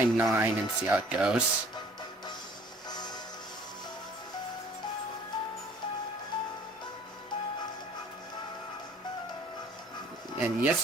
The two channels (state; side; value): normal; both; correlation 0.53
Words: 9 and see how it goes. And